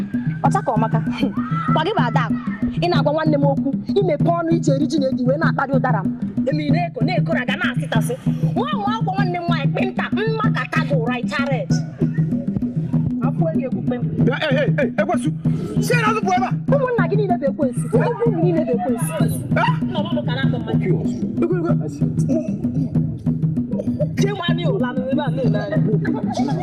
ọcha ka ọmaka gwa gị bụ Adakụ ị na-agwa nwanne m okwu imepe ọnụ iji eri ji na edi wee na-akparị ụdara m emi na-eko na ga na-asịtasị nwa nwa akwụkwọ nwanne m nwaanyị kpịnta mmakata gị ụra icharet afọ enyi ekwukpe m ekwesu si na azụ bụ ebe a ụmụnna gị niile bụ ekwensu ụmụ niile bụ ekwensu jee nwanne ụla n'ebe a na-ele anya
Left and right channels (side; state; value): both; identical; correlation 1.00